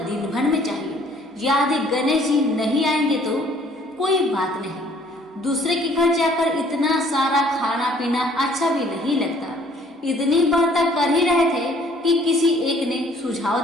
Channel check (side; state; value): both; normal; correlation 0.59